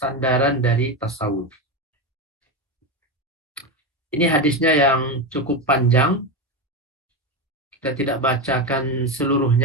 dari tasawuf. Ini hadisnya yang cukup panjang. Kita tidak bacakan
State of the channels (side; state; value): both; normal; correlation 0.15